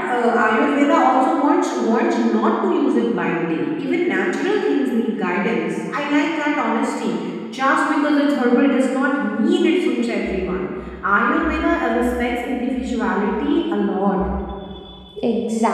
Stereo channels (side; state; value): both; identical; correlation 1.00